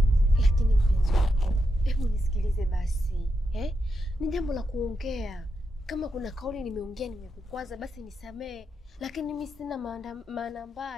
Lakini mpenzi wangu, hebu nisikilize basi. Ni jambo la kuongea. Kama kuna kauli nimeongea nimekukwaza basi nisamee. Lakini mimi sina maana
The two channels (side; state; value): both; normal; correlation 0.85